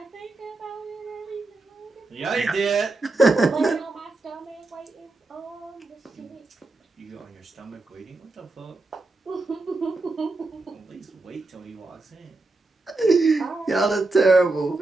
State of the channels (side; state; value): left; quieter; 3.2 dB